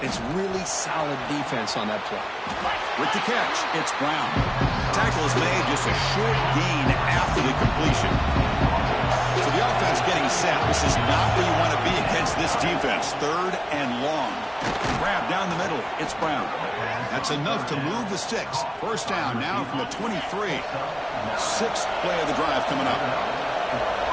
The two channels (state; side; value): identical; both; correlation 1.00